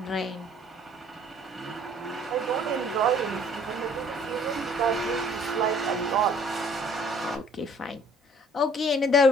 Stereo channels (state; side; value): normal; both; correlation 0.56